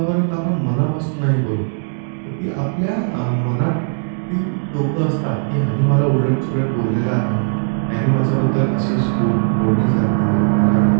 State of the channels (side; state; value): left; silent; 67 dB below the other